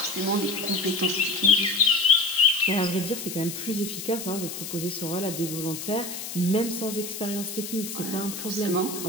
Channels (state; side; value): noise; left; hiss, 8 dB below the sound